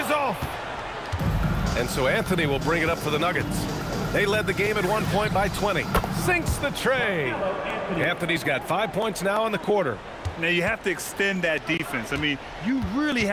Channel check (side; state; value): both; identical; correlation 1.00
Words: off. And so Anthony will bring it up for the Nuggets. They led the game at one point by 20. Sinks the tray. Anthony's got 5 points now in the quarter. Now, you have to extend that defense. I mean, you really